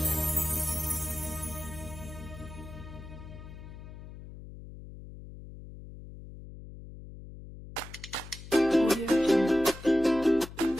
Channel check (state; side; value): noise; left; hum, 14 dB below the sound